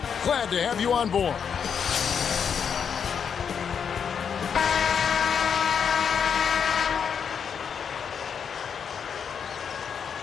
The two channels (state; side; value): quieter; right; 7.1 dB